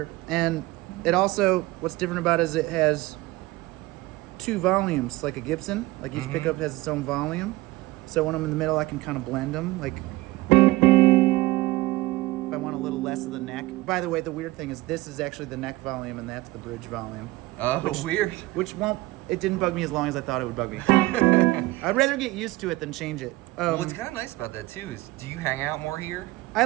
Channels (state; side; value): quieter; left; 19.3 dB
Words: And it also, what's different about it is it has 2 volumes, like a Gibson. Like, each pickup has its own volume. So when I'm in the middle, I can kind of blend them. Like, if I want a little less of the neck. By the way, the weird thing is this is actually the neck volume, and that's the bridge volume. Oh, weird. It didn't bug me as long as I thought it would bug me. I'd rather get used to it than change it. What's kind of nice about that, too, is do you hang out more here? I